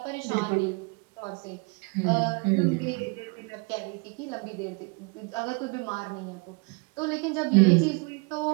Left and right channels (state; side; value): quieter; left; 31.0 dB